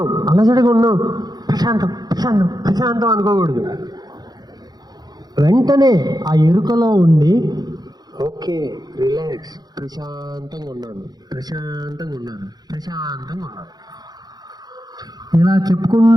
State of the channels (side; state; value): left; late; 0.19 ms